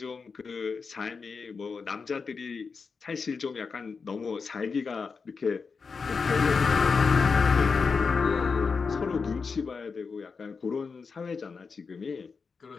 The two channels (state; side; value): quieter; right; 5.1 dB